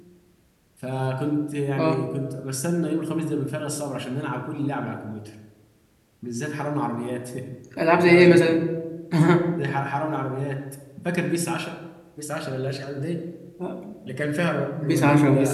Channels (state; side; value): identical; both; correlation 1.00